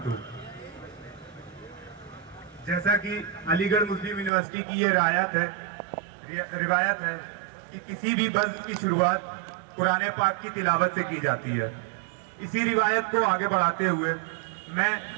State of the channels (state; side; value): drops out; left; at 4.3 s